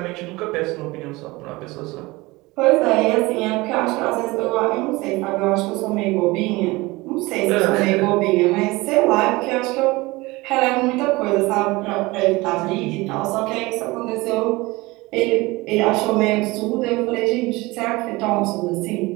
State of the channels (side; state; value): left; quieter; 21.9 dB